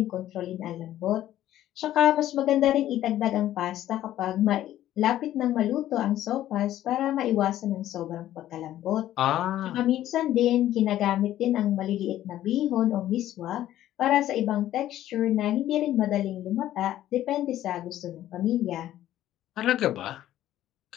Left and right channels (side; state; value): right; quieter; 13.0 dB